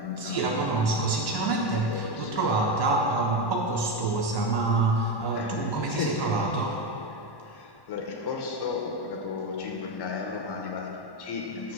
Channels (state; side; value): late; right; 1.1 ms